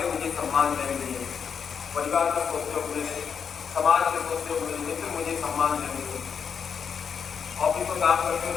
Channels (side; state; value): right; quieter; 6.8 dB